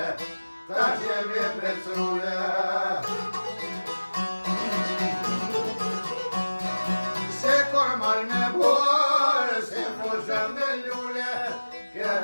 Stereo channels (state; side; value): inverted; both; correlation -1.00